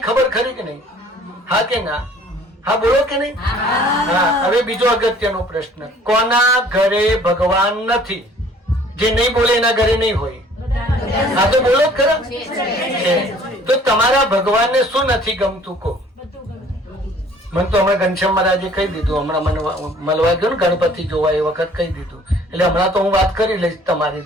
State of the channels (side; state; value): both; normal; correlation 0.54